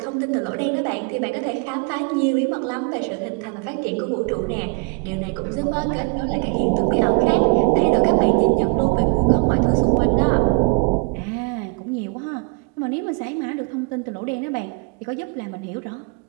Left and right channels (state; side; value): quieter; left; 34.2 dB